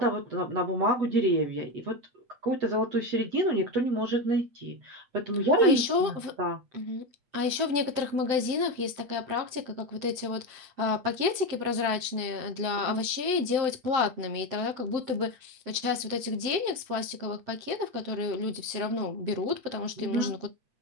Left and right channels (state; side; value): late; left; 7.7 ms